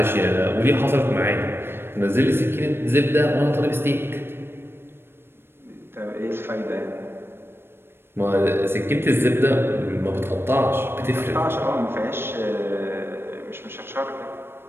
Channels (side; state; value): left; late; 0.11 ms